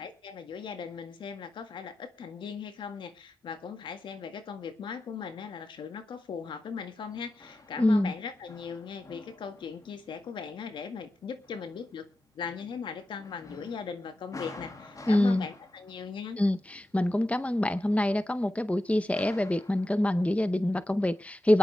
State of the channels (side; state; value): both; normal; correlation 0.92